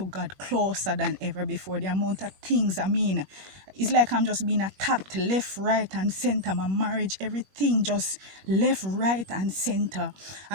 God closer than ever before. The amount of things, I mean, it's like I'm just being attacked left, right, and center. My marriage, everything just left, right, and center.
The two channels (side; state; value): left; late; 21 ms